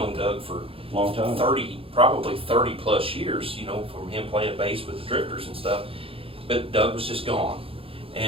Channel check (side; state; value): left; late; 0.27 ms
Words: Doug for Long time. probably 30 plus years, you know, from him playing bass with the Drifters and stuff. But Doug was just gone,